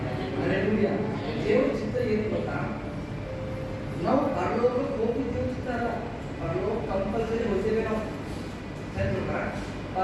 hallelujah. ದೇವರ ಚಿತ್ತ ಏನು ಗೊತ್ತಾ, ನಾವು ಪರಲೋಕಕ್ಕೆ ಹೋಗ್ತಿದ್ದೇವೆ ಚಿತ್ತ ಅಲ್ಲ, ಪರಲೋಕ ಕಂಪಲ್ಸರಿ ಹೋಗ್ತೇವೆ. ನಾವು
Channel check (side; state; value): both; identical; correlation 1.00